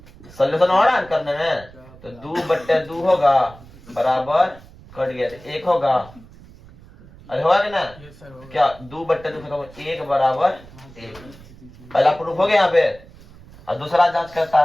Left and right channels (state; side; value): noise; right; rumble, 21 dB below the sound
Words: सोल्यूशन हो रहा है करने में? तो 2/2 होगा बराबर, कट गया तो 1 होगा। अरे होगा कि ना? क्या 2/2 1 बराबर 1। पहला प्रूफ हो गया यहाँ पे। और दूसरा जांच करता